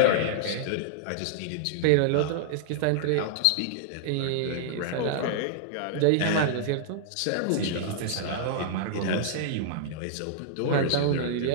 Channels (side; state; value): both; different; correlation -0.01